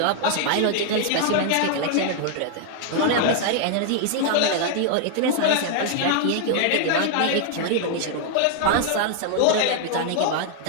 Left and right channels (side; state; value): both; different; correlation 0.00